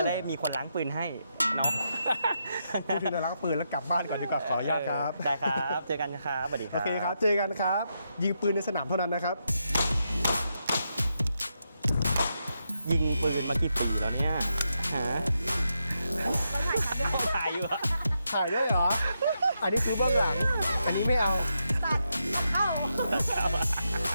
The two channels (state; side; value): inverted; both; correlation -0.83